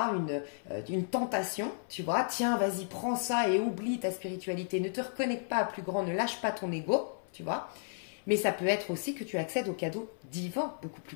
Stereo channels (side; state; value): right; silent; 56 dB below the other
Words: une tentation, tu vois. Tiens, vas-y, prends ça et oublie ta spiritualité. Ne te reconnecte pas à plus grand, ne lâche pas ton ego, tu vois. Mais ça peut être aussi que tu accèdes aux cadeaux divins, beaucoup